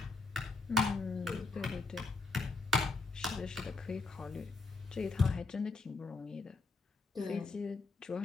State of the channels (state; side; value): quieter; right; 3.6 dB